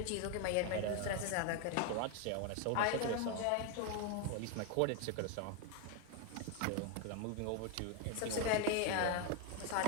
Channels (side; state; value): both; different; correlation 0.01